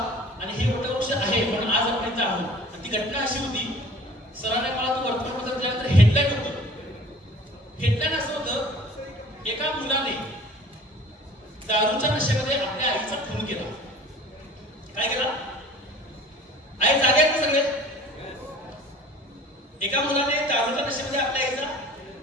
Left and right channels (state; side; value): normal; both; correlation 0.46